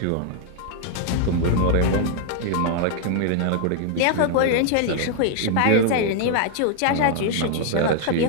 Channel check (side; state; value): both; different; correlation 0.00